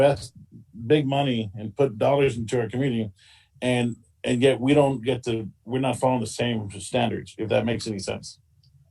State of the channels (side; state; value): both; identical; correlation 1.00